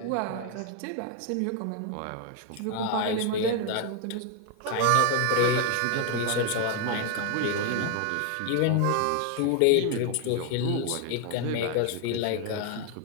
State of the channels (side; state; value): both; different; correlation 0.01